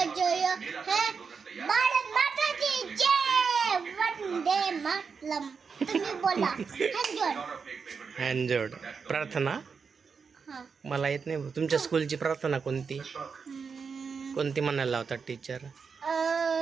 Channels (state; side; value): quieter; left; 5.6 dB